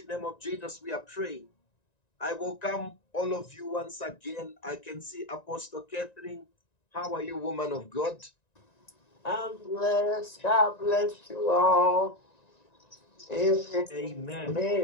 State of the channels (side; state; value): right; late; 1.9 ms